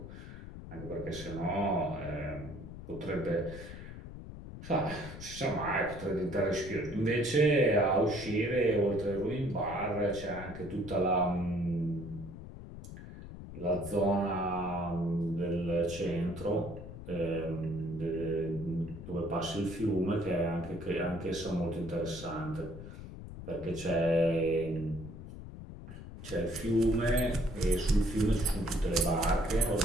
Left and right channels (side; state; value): left; noise; rumble, 12 dB below the sound